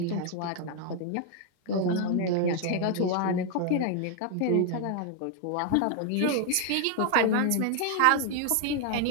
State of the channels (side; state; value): both; different; correlation 0.00